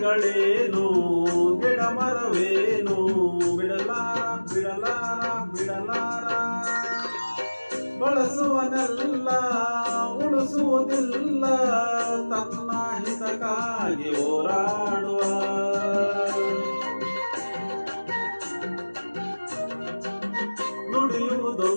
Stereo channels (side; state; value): both; inverted; correlation -1.00